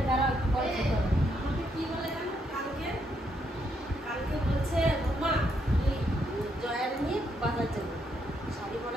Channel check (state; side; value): normal; both; correlation 0.76